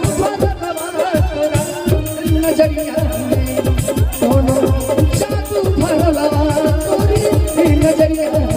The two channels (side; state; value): both; identical; correlation 1.00